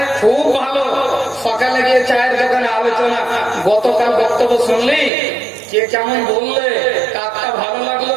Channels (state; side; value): drops out; left; at 5.1 s